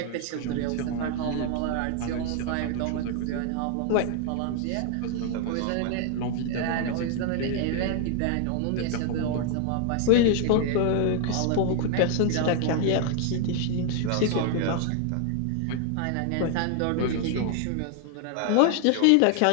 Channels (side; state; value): both; different; correlation 0.00